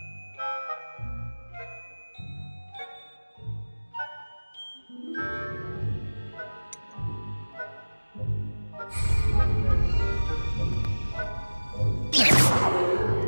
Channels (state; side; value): inverted; both; correlation -1.00